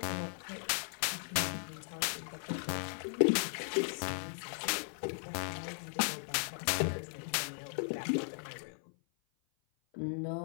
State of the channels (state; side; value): silent; right; 53 dB below the other